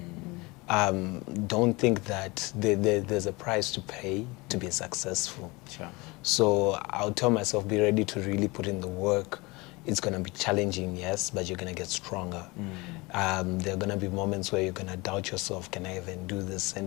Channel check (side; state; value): right; quieter; 24.3 dB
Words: Don't think that there's a price to pay to be successful. Sure. So I'll tell myself, be ready to really put in the work. It's going to be challenging, yes, but you're going to get stronger. There are going to be moments where you're going to doubt yourself. Can I even do this?